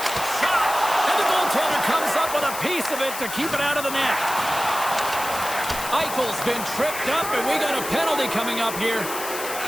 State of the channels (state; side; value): noise; left; hiss, 8 dB below the sound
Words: Shot! And the goaltender comes up with a piece of it to keep it out of the net. Eichel's been tripped up, and we got a penalty coming up here.